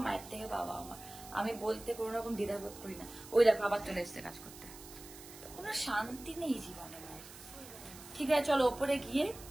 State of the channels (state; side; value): noise; right; hiss, 16 dB below the sound